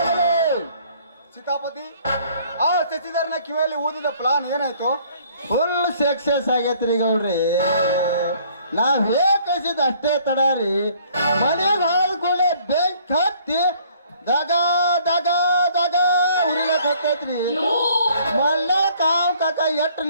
ಸೀತಾಪತಿ, ಆ ಶಶಿಧರನ ಕಿವಿಯಲ್ಲಿ ಊದಿದ ಪ್ಲಾನ್ ಏನಾಯ್ತು? ಫುಲ್ ಸಕ್ಸಸ್ ಆಗೈತ್ರಿ ಗೌಡ್ರಿ. ನಾವ್ ಹೇಗಿಸಿದ ಅಷ್ಟೇ ತಡಾರಿ. ಮನೆಗೆ ಹಾಲ್ಕೊಂಡೆ ಬೆಂಕ್ ಹತ್ತಿ ದಗ ದಗ ದಗ ಉರಿಲಕ್ ಹೋಗ್ತೈತ್ರಿ. ಮಲ್ಲ ಕಾವ್ ಕಾಕ ಎಟ್ಟು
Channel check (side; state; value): both; inverted; correlation -0.59